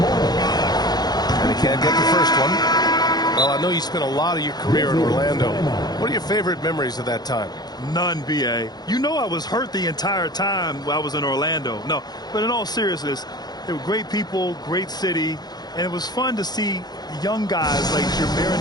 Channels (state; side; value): late; right; 0.19 ms